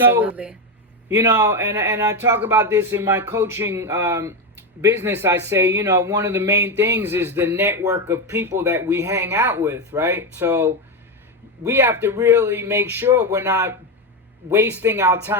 And I talk about this in my coaching business. I say, one of the main things is the network of people that we hang out with, right? So we have to really make sure we're not wasting our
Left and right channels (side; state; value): both; normal; correlation 0.11